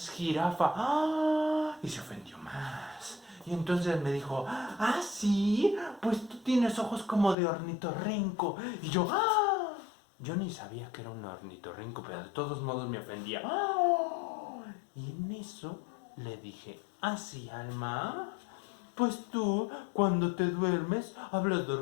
jirafa. ¡Ah! Y se ofendió más. Y entonces me dijo, ah, sí, pues tú tienes ojos como de ornitorrinco. Y yo, ¡ah! Yo ni sabía que era un ornitorrinco, pero de todos modos me ofendía. ¡Ah! Y en eso le dije, ah, sí, Alma, pues tú, cuando te duermes, hablas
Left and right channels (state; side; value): drops out; right; at 7.4 s